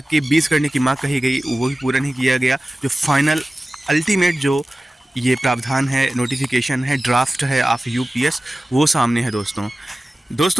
के 20 करने की मांग कही गई, वो भी पूरा नहीं किया गया। जो फाइनल अल्टीमेट जो ये प्रावधान है, नोटिफिकेशन है, ड्राफ्ट है ऑफ यूपीएस, वो सामने है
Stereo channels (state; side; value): normal; both; correlation 0.96